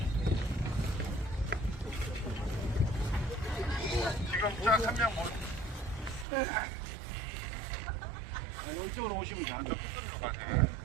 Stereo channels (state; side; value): drops out; left; at 6.2 s